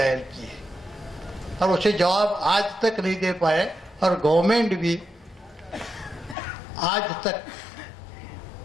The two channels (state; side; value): drops out; right; at 6.4 s